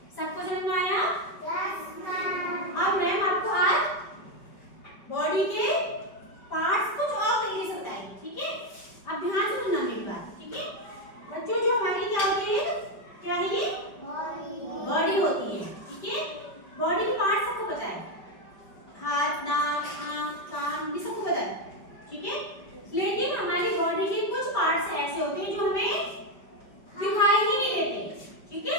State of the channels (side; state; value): right; late; 5.1 ms